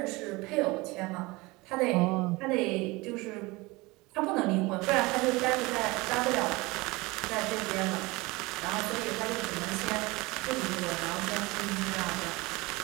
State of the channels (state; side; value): quieter; left; 23.1 dB